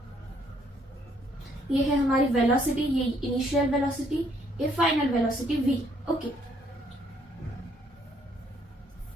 ये है हमारी वेलोसिटी, ये इनिशियल वेलोसिटी, ये फाइनल वेलोसिटी v। ओके,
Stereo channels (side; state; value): both; normal; correlation 0.67